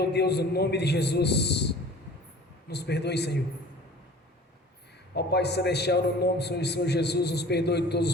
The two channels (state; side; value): normal; both; correlation 0.45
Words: Deus, no nome de Jesus, nos perdoe, Senhor. Ó Pai Celestial, no nome do Senhor Jesus, nos perdoe de todos